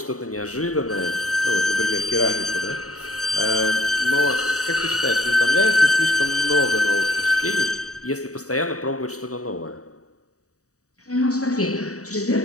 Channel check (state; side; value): late; right; 0.66 ms